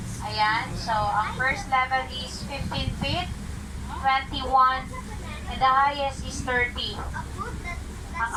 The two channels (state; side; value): identical; both; correlation 1.00